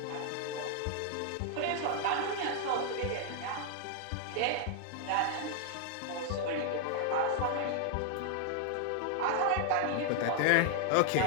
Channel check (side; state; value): both; different; correlation 0.00